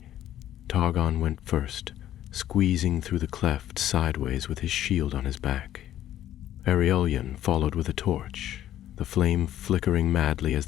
Targon went first, squeezing through the cleft sideways with his shield on his back. Aurelion followed with a torch, the flame flickering madly as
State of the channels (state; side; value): quieter; right; 12.2 dB